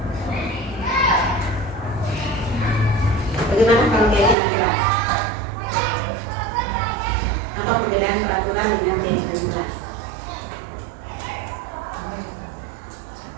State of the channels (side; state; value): left; drops out; at 4.4 s